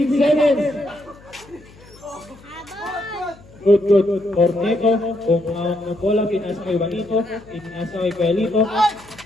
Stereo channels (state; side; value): noise; left; hum, 24 dB below the sound